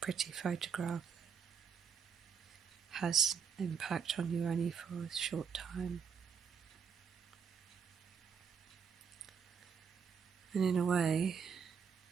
pretty photograph that has impact on you only for a short time. And in a way,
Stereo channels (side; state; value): left; quieter; 6.6 dB